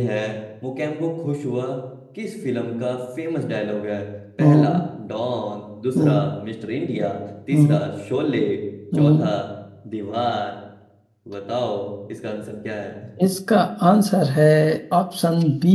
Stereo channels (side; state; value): both; identical; correlation 1.00